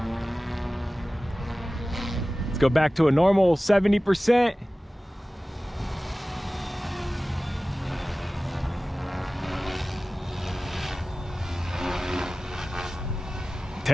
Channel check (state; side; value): normal; both; correlation 0.97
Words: Let's go back to a normal 70%.